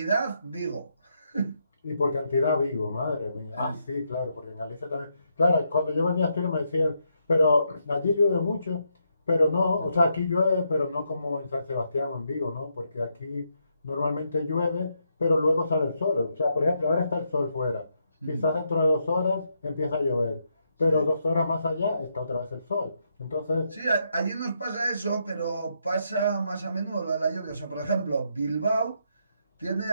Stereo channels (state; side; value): inverted; both; correlation -0.79